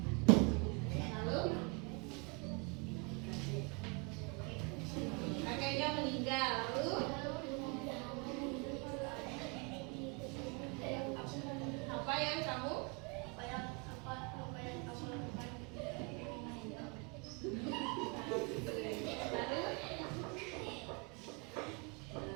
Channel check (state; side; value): quieter; left; 32.1 dB